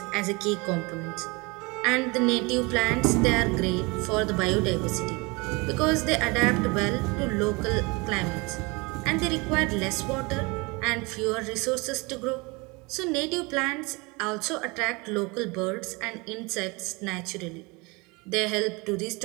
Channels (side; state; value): left; quieter; 26.7 dB